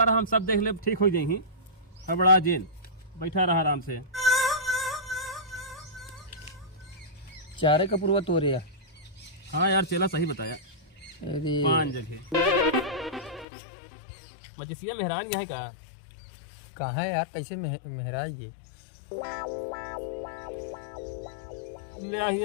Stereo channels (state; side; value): drops out; right; at 13.5 s